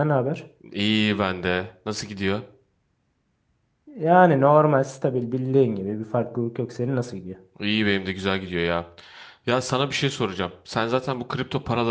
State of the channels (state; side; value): identical; both; correlation 1.00